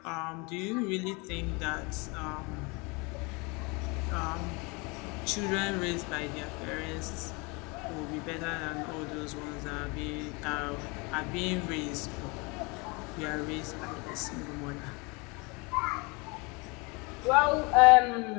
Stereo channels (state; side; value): quieter; right; 28.5 dB